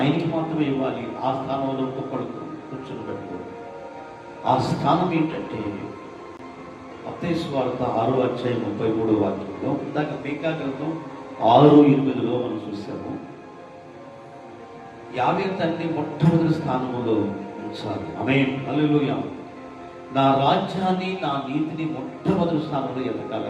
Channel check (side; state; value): both; identical; correlation 1.00